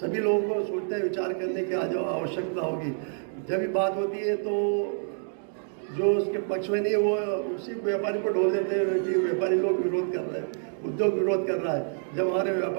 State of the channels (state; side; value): silent; left; digital silence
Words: लोगों को सोचते हैं विचार करने की आज आवश्यकता होगी। जब भी बात होती है तो जो उसके पक्ष में नहीं है वो उसी व्यापारी को ढोल देते हैं कि व्यापारी लोग विरोध कर रहे हैं, उद्योग विरोध कर रहा है। जब हमारे